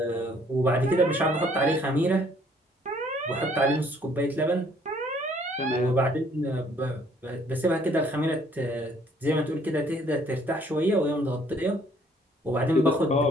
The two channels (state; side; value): normal; both; correlation 0.62